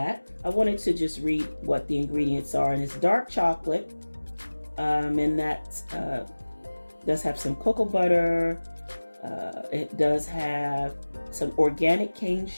I wanted to just read what the ingredients are, and it's dark chocolate, and that does have some cocoa butter. It does have some organic cane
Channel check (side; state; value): both; inverted; correlation -1.00